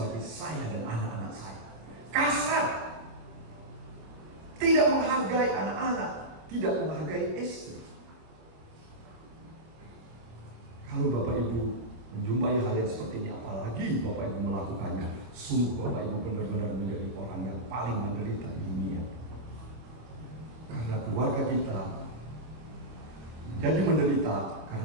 saya dan anak-anak saya. Kasar, tidak menghargai anak-anak, tidak menghargai istri. Kalau Bapak Ibu menjumpai hal yang seperti ini, apalagi Bapak Ibu melakukannya, sungguh Bapak Ibu benar-benar menjadi orang yang paling menderita di dunia. Karena keluarga kita menjadi menderita karena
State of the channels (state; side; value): late; left; 26 ms